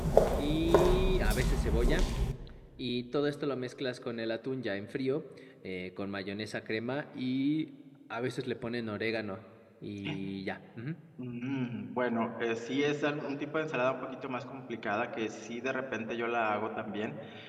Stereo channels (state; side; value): identical; both; correlation 1.00